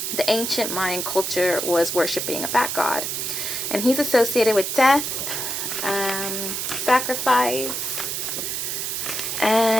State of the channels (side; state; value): right; noise; hiss, 2 dB below the sound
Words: the ancient Mayan culture was worshipping a bat god. And he's associated with death, sacrifice,